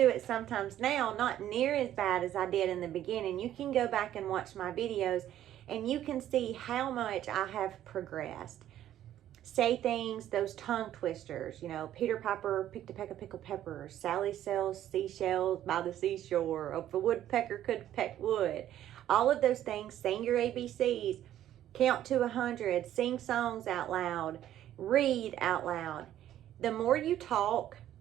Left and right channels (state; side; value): quieter; left; 12.0 dB